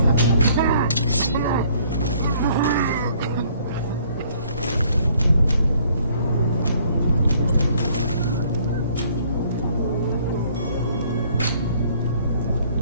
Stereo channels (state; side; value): inverted; both; correlation -0.61